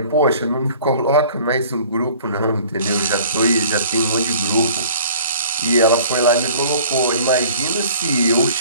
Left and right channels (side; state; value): both; inverted; correlation -0.50